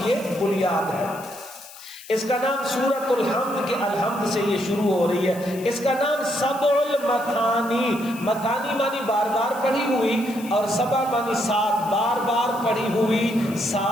یہ بنیاد ہے۔ اس کا نام سورۃ الحمد کے الحمد سے یہ شروع ہو رہی ہے۔ اس کا نام سبع المثانی، مثانی معنی بار بار پڑھی ہوئی، اور سبع معنی 7، بار بار پڑھی ہوئی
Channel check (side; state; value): left; noise; hiss, 18 dB below the sound